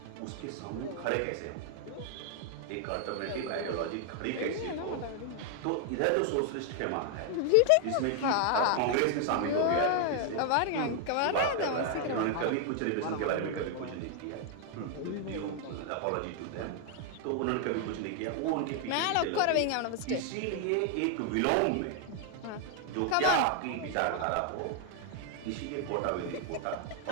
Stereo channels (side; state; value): both; different; correlation 0.00